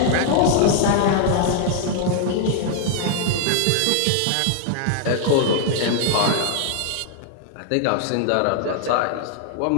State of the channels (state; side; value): different; both; correlation 0.00